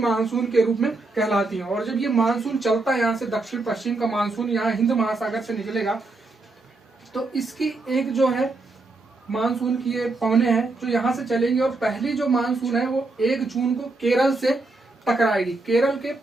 के रूप में कहलाती है। और जब ये मानसून चलता है, यहाँ से दक्षिण पश्चिम का मानसून यहाँ हिंद महासागर से निकलेगा, तो इसकी एक जो है मानसून की ये पवने हैं जो यहाँ से चलेंगी। और पहली जो मानसून है वो 1 जून को केरल से टकराएगी, केरल के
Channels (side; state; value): left; quieter; 3.2 dB